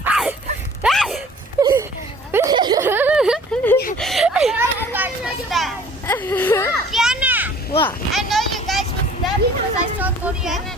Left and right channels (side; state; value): both; normal; correlation 0.51